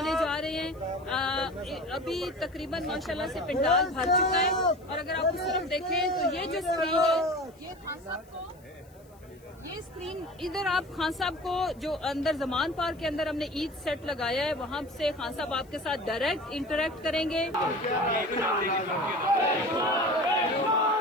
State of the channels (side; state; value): left; noise; hiss, 30 dB below the sound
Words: जा रहे हैं। अभी तकरीबन माशाल्लाह से पंडाल भर चुका है और अगर आप उस तरफ देखें तो ये जो स्क्रीन है ये खान साहब को, ये स्क्रीन इधर आप खान साहब को जो अंदर जमान पार्क के अंदर हमने ईद सेट लगाया है वहां से खान साहब आपके साथ डायरेक्ट इंटरेक्ट करेंगे।